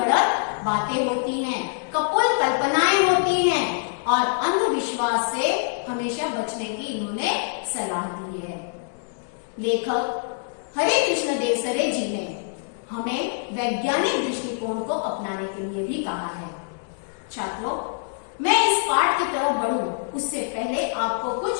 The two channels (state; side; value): silent; right; digital silence